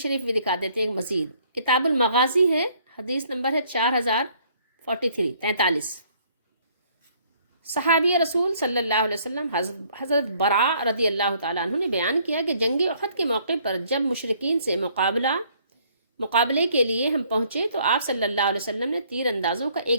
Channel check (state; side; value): inverted; both; correlation -0.63